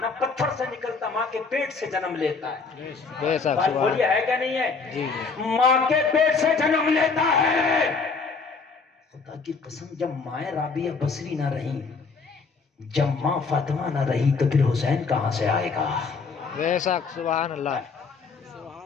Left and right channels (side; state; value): right; quieter; 4.7 dB